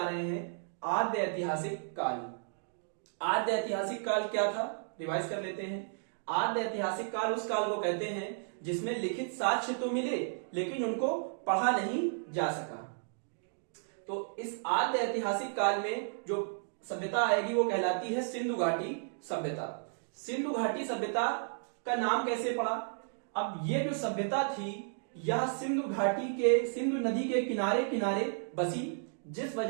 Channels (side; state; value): left; silent; digital silence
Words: रहे हैं आद्य ऐतिहासिक काल। आद्य ऐतिहासिक काल क्या था, रिवाइज कर लेते हैं। आद्य ऐतिहासिक काल उस काल को कहते हैं जिसमें लिखित साक्ष्य तो मिले लेकिन उनको पढ़ा नहीं जा सका। तो इस आद्य ऐतिहासिक काल में जो सभ्यता आएगी वो कहलाती है सिंधु घाटी सभ्यता। सिंधु घाटी सभ्यता का नाम कैसे पड़ा? अब ये जो सभ्यता थी यह सिंधु घाटी के, सिंधु नदी के किनारे किनारे बसी, जिस